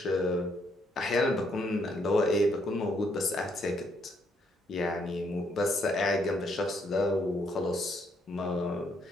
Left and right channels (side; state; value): both; normal; correlation 0.72